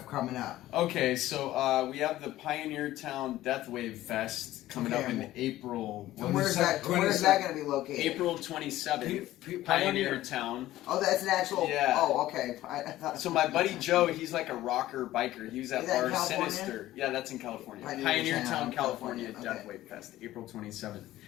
coming up. Okay, so we have the Pioneer Town Deathwave Fest coming up in Okay. April. And where's that going to be located? April 27th. Pioneer. Pioneer Town. Oh, that's an actual. Yeah. Oh, okay. I thought, So my buddy Joe, he's like a rocker biker. He was at Is that in our California? Sinister. Yeah, that's in California. Pioneer Pioneer Town, Town, California, California. Okay. Deathwave Fest, April 27th.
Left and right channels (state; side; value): quieter; right; 15.1 dB